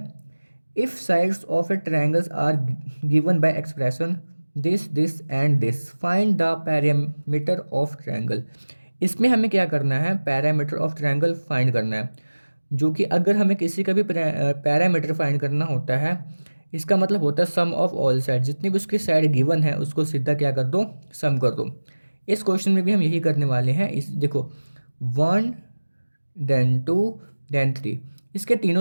if sides of a triangles are given by expression this and this, find the parameter of triangle. इसमें हमें क्या करना है, पैरामीटर ऑफ ट्रायंगल फाइंड करना है। जो कि अगर हमें किसी का भी पैरामीटर फाइंड करना होता है, इसका मतलब होता है सम ऑफ ऑल साइड, जितनी भी उसकी साइड गिवन है उसको सीधा क्या कर दो, सम कर दो। इस क्वेश्चन में भी हम यही करने वाले हैं। इस देखो 1 देन 2 देन 3, इसके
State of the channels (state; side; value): inverted; both; correlation -1.00